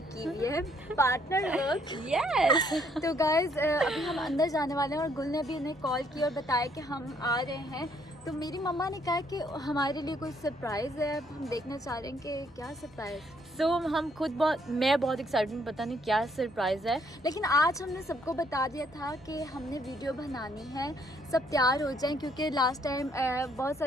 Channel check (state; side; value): normal; both; correlation 0.68